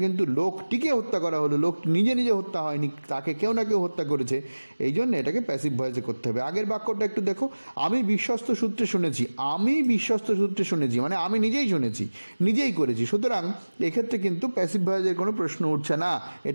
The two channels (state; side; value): inverted; both; correlation -1.00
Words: কিন্তু লোকটিকে হত্যা করা হলো, লোক নিজে হত্যা হয়নি, তাকে কেউ না কেউ হত্যা করেছে, এই জন্য এটাকে প্যাসিভ ভয়েসে করতে হবে। আগের বাক্যটা একটু দেখো, আমি বিশ্বস্ত সূত্রে শুনেছি। আমি বিশ্বস্ত সূত্রে শুনেছি মানে আমি নিজেই শুনেছি, নিজেই করেছি, সুতরাং এক্ষেত্রে কিন্তু প্যাসিভ ভয়েসের কোনো প্রশ্ন উঠছে না,